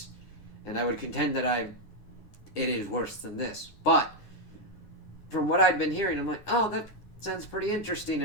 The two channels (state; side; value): late; right; 9.6 ms